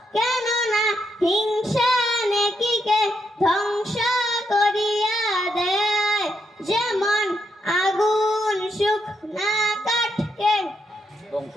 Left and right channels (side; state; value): both; normal; correlation 0.79